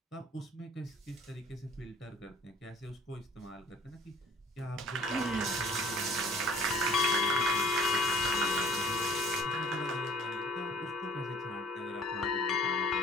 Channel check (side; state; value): both; normal; correlation 0.53